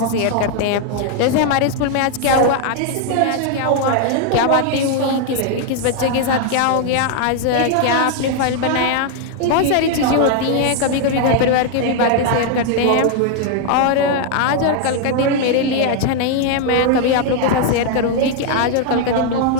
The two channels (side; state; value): both; different; correlation 0.00